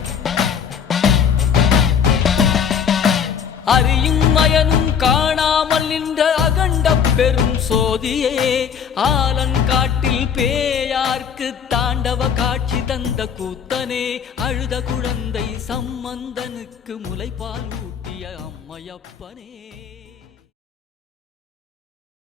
அறியும் மயனும் காணாமல் நின்ற அகண்ட பெரும் சோதியே ஆலங்காட்டில் பேயார்க்கு தாண்டவ காட்சி தந்த கூத்தனே அழுத குழந்தை சம்பந்தனுக்கு முலைப்பால் ஊட்டிய அம்மையப்பனே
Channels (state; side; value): quieter; right; 7.4 dB